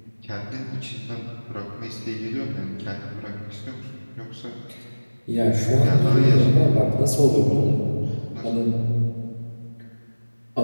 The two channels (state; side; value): inverted; both; correlation -1.00